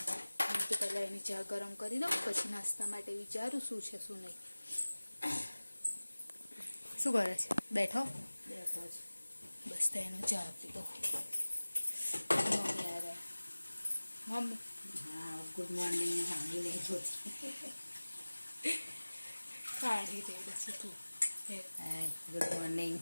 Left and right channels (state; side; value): inverted; both; correlation -1.00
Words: હું તો પહેલાં એની ચા ગરમ કરી દઉં, પછી નાસ્તા માટે વિચારું શું છે શું નહીં. શું કરે છે? બેઠો બેઠો છે. બસ તો એનો ચા આપી દો. મમ્મી હા, ગુડ મોર્નિંગ. હાની નહીં જોતી. કાઢી દે પછી તું. હાય, ગુડ મોર્નિંગ.